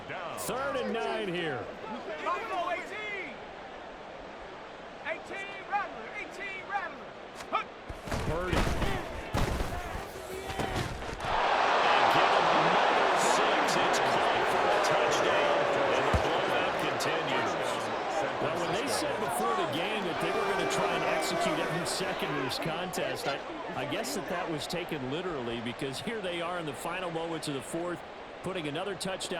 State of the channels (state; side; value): identical; both; correlation 1.00